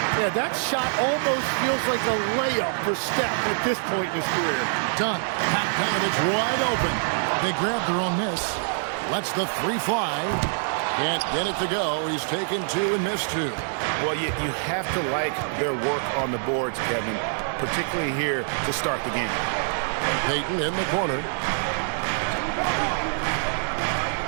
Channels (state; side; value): silent; left; 62 dB below the other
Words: Yeah, that shot almost feels like a layup for Steph at this point in his career. Done. Bogdanovich wide open. They grab their own miss. Lets the 3 fly. Can't get it to go. He's taken 2 and missed 2. Well, you have to like their work on the boards, Kevin, particularly here to start the game. Payton in the corner.